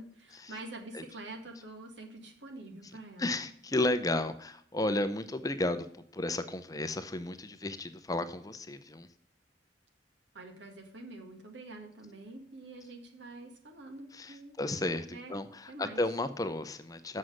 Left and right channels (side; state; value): both; normal; correlation 0.53